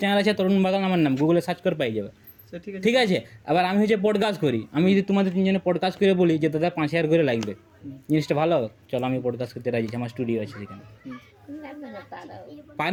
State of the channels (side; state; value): both; identical; correlation 1.00